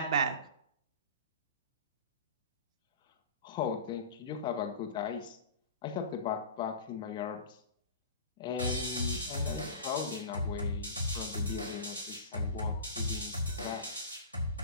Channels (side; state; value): both; inverted; correlation -0.33